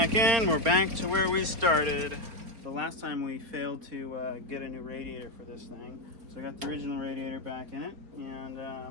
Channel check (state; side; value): late; left; 4.4 ms